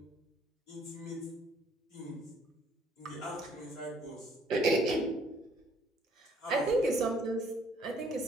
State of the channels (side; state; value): both; normal; correlation 0.62